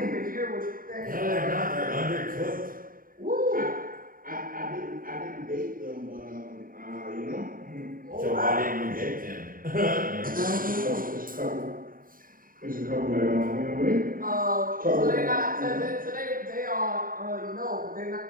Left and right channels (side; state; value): left; late; 0.41 ms